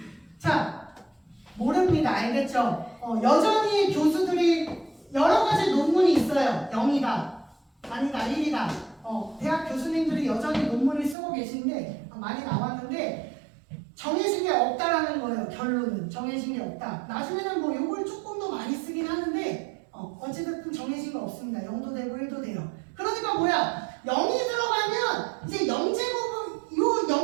자, 모릅니다. 알겠죠? 여전히 교수들이 여러 가지 논문이 있어요. 0이다. 아니다, 1이다. 대학 교수님들이 여전히 논문을 쓰고 계신데, 많이 나왔는데, 정해진 게 없다라는 거예요. 결론은. 정해진 게 없다. 나중에는 뭐 요걸 조금 더 많이 쓰긴 하는데, 어찌됐든 정해진 거 없습니다. 0도 되고 1도 돼요. 그러니까 뭐야? 0이 들어가면 이제 0제곱, 요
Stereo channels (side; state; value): left; drops out; at 11.2 s